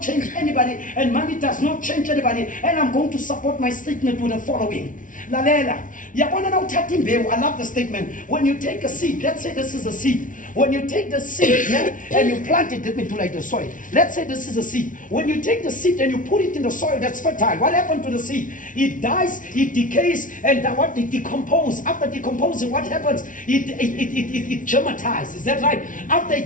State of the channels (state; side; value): late; right; 0.38 ms